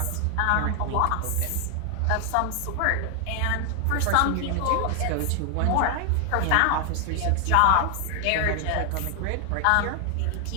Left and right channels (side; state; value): both; different; correlation 0.00